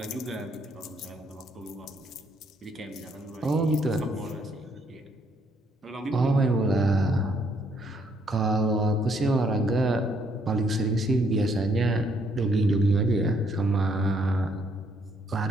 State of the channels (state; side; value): normal; both; correlation 0.69